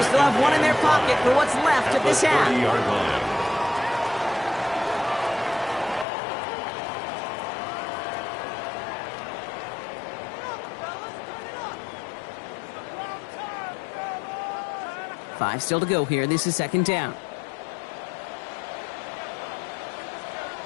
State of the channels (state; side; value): drops out; right; at 6.1 s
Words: still have one in their pocket for what's left of this half. Five still to go here. This is second down.